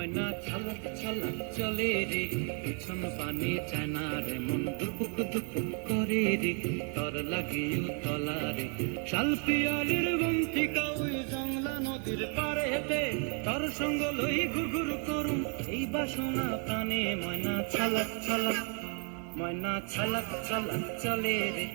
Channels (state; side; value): quieter; left; 39.8 dB